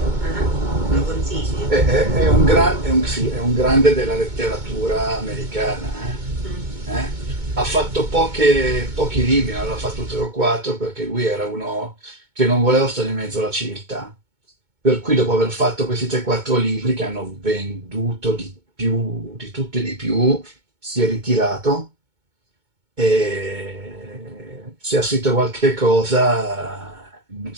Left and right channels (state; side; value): late; left; 2.2 ms